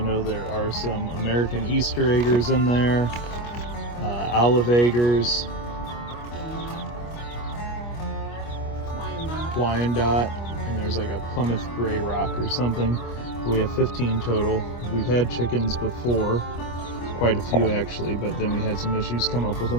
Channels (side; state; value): right; late; 25 ms